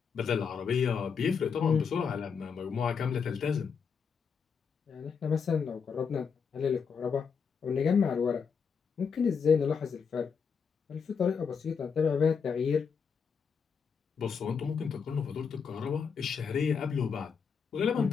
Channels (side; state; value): right; quieter; 6.2 dB